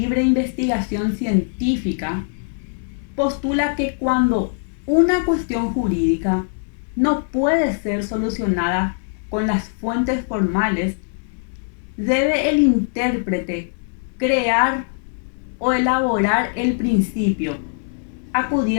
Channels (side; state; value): right; silent; digital silence